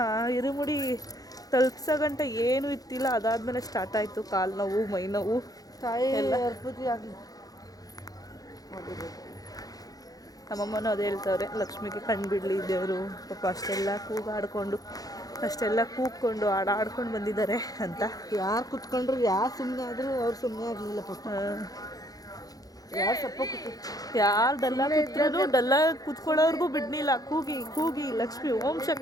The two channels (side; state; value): right; late; 0.18 ms